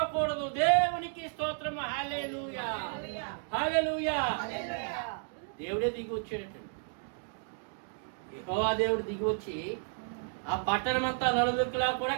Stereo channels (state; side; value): silent; left; 56 dB below the other